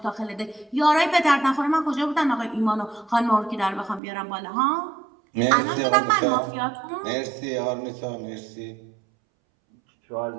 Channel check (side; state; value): left; drops out; at 4.0 s